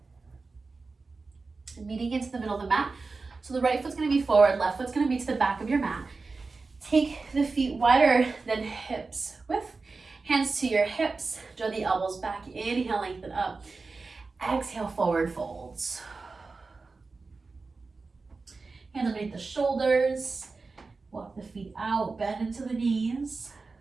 And meeting into the middle of the mat. So the right foot's gonna be forward, left foot's gonna be to the back of your mat. Take the feet wider than hips width. Hands to your hips, draw the elbows back. Inhale, lengthen up. Exhale, forward folds. Hands underneath the shoulders. Walk the feet out, bend into the knees.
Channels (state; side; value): quieter; left; 4.0 dB